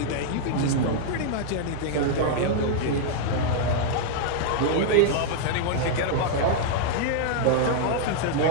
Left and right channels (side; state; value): both; different; correlation -0.01